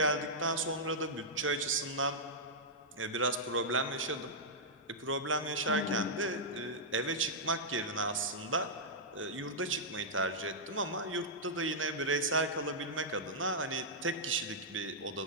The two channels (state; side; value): normal; both; correlation -0.10